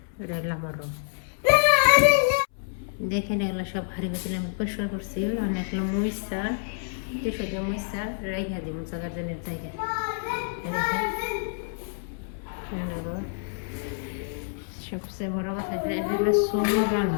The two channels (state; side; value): silent; right; 60 dB below the other